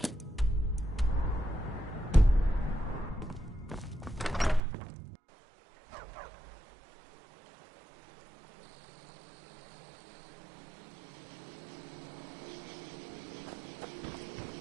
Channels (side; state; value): left; drops out; at 4.6 s